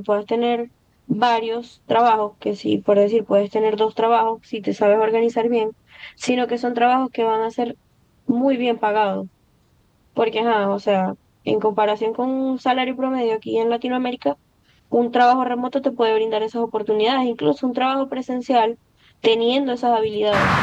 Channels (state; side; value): identical; both; correlation 1.00